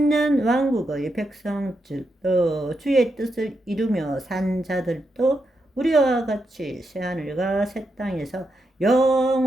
백성들도 주의 뜻을 이루며 산 자들도 우리와 같이 새하늘과 새 땅에서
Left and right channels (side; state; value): both; normal; correlation 0.84